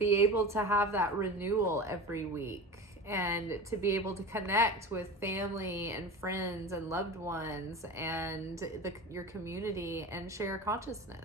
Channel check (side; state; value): both; normal; correlation 0.30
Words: able to have that renewal every week, and to be able to connect with family and friends and loved ones and your community, and share